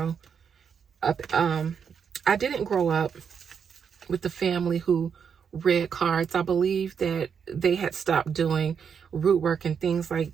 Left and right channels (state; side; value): quieter; left; 6.9 dB